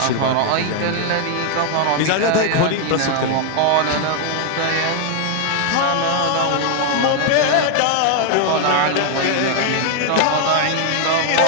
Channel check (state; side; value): different; both; correlation 0.00